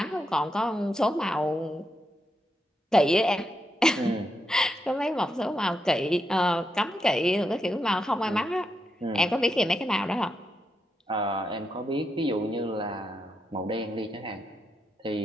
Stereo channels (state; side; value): normal; both; correlation 0.83